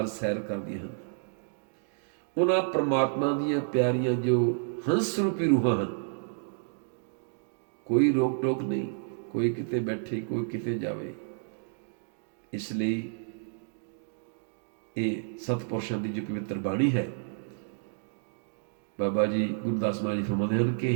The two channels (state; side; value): silent; left; digital silence